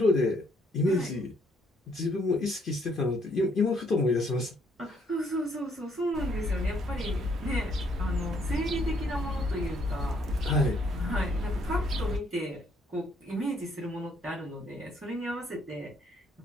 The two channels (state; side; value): normal; both; correlation 0.68